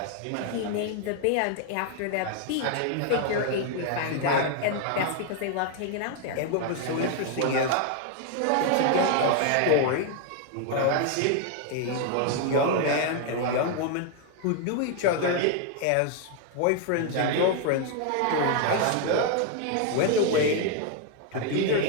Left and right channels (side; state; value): both; different; correlation 0.01